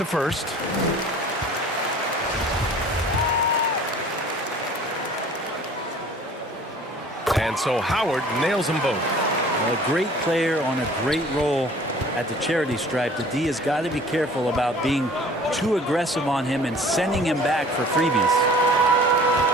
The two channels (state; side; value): normal; both; correlation 0.49